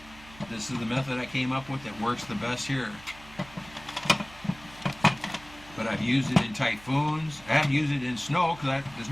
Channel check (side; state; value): right; noise; hum, 21 dB below the sound